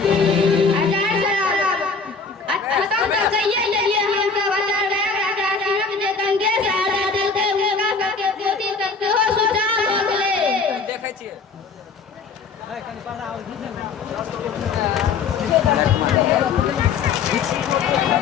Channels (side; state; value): right; quieter; 4.9 dB